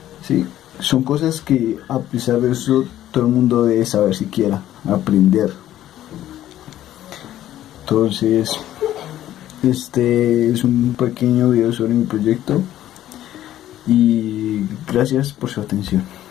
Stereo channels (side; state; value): right; quieter; 12.8 dB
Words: ¿sí? Son cosas que, a pesar de eso, todo el mundo debe saber siquiera, aprender. Entonces, este es un pequeño video sobre mi proyecto y gracias por su atención.